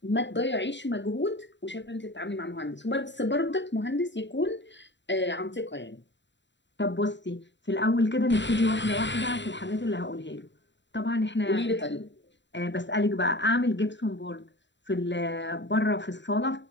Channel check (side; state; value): right; late; 0.52 ms